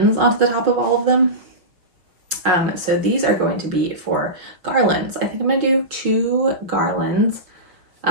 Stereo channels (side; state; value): left; late; 5.5 ms